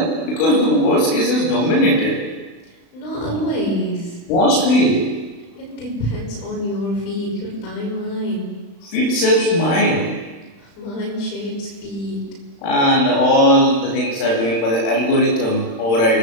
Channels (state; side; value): late; right; 35 ms